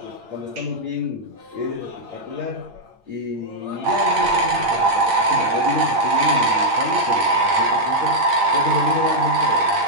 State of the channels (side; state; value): left; late; 8.8 ms